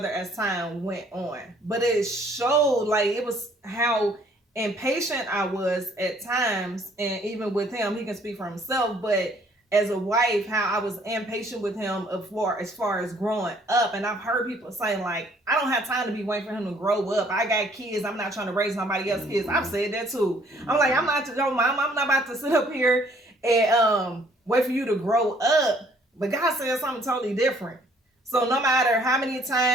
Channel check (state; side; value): normal; both; correlation 0.61